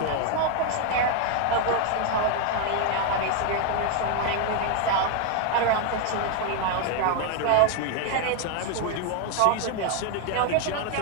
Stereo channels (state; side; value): different; both; correlation 0.00